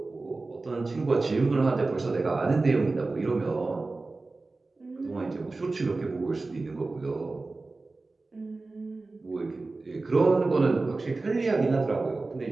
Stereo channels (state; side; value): quieter; left; 3.5 dB